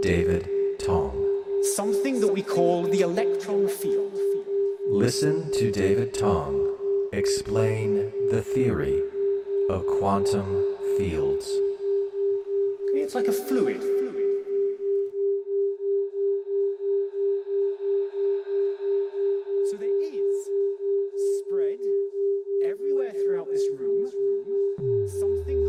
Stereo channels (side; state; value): both; identical; correlation 1.00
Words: David Tong. something that we call the electron field. Listen to David Tong explain the theory of quantum fields. It's like a fluid. So there is spread everywhere throughout this room, something